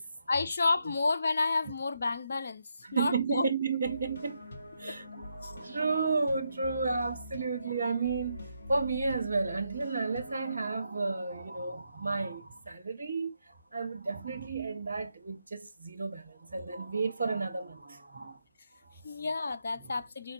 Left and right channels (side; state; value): both; inverted; correlation -0.80